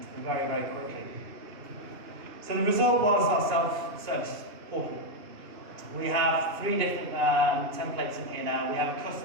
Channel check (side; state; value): left; late; 2.6 ms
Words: very, very quickly. So the result was our self-service portal. We have 3 different templates in here now. We have a